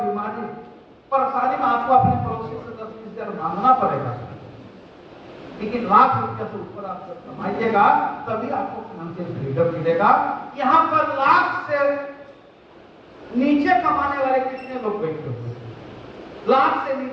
परेशानी में आपको अपने पड़ोसी से 10-20 हजार मांगना पड़ेगा। लेकिन लाख रुपया से ऊपर आप जब कमाइएगा तभी आपको फाइनेंशियल फ्रीडम मिलेगा। यहाँ पर लाख से नीचे कमाने वाले कितने लोग बैठे हुए? लाख से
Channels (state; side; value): identical; both; correlation 1.00